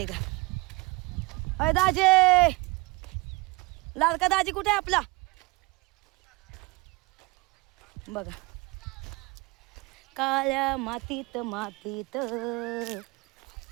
आहे का. अय दाजी, लाडका दाजी कुठे आहे आपला बघा. काळ्या मातीत मातीत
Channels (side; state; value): left; quieter; 24.2 dB